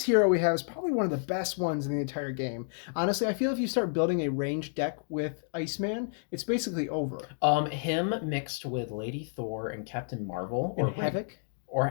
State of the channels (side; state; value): right; silent; digital silence